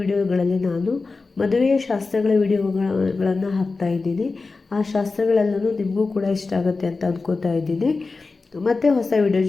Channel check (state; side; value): quieter; right; 3.9 dB